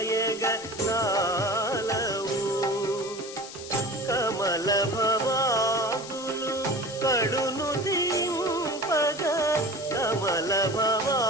కాలవు కమల భవాదులు కడును దింపగ కమల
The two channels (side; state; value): left; noise; hiss, 13 dB below the sound